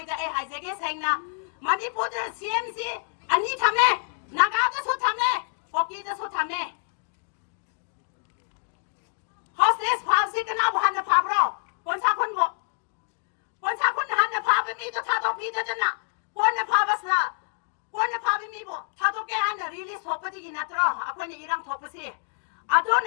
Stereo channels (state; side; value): silent; right; digital silence